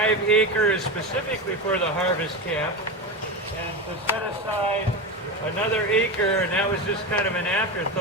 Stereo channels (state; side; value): normal; both; correlation 0.20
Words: acres specifically for the harvest camp, and to set aside another acre, and that was just kind of an